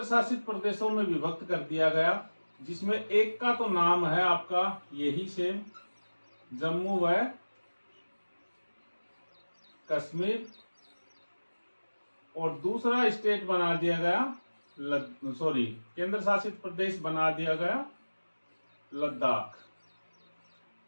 शासित प्रदेशों में विभक्त कर दिया गया, जिसमें एक का तो नाम है आपका यही सेम जम्मू व कश्मीर, और दूसरा स्टेट बना दिया गया केंद्र शासित प्रदेश बना दिया गया लद्दाख।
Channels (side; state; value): both; inverted; correlation -1.00